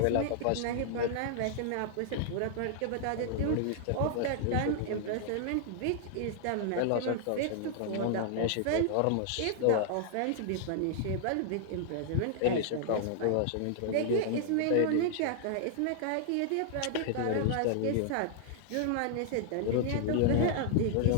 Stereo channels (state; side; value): different; both; correlation -0.01